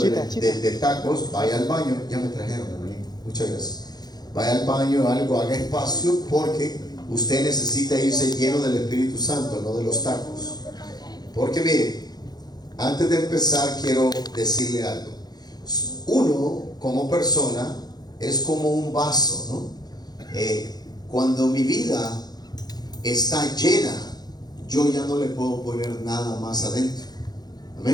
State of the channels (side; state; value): right; late; 0.19 ms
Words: tacos, vaya al baño. Ya me trajeron, hermanito. Muchas gracias. Vaya al baño, haga espacio, porque usted necesita irse lleno del Espíritu Santo, no de los tacos. Porque mire, antes de empezar quiero decirle algo. Uno, como persona, es como un vaso, ¿no? Cuando mi vida está llena, yo ya no le puedo poner nada más adentro.